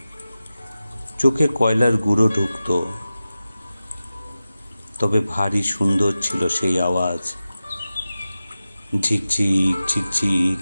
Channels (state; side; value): inverted; both; correlation -0.95